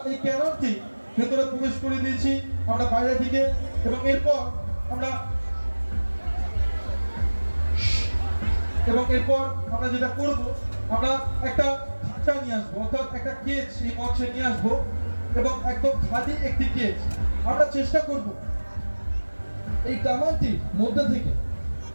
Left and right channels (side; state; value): both; inverted; correlation -1.00